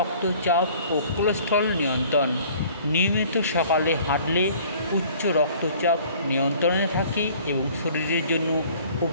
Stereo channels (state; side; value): inverted; both; correlation -0.52